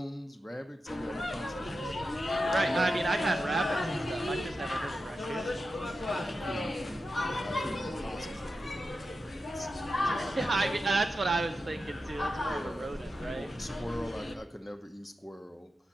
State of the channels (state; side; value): normal; both; correlation 0.91